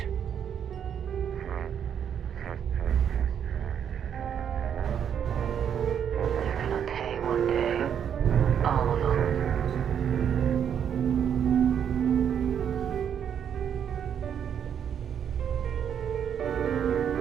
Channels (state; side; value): quieter; left; 8.5 dB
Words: They're gonna pay one day. All of them.